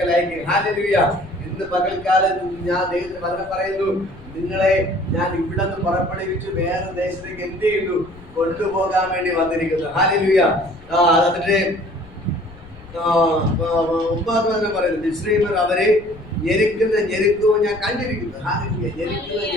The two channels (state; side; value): noise; left; rumble, 20 dB below the sound